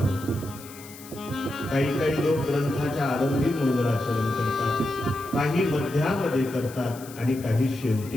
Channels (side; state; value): left; noise; hiss, 18 dB below the sound